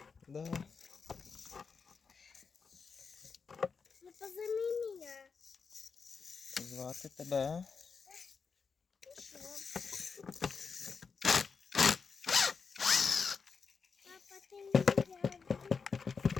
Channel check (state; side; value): quieter; right; 5.3 dB